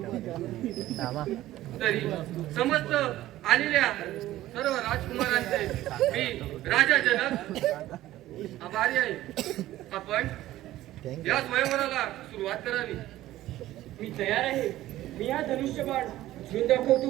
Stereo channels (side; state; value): left; quieter; 15.0 dB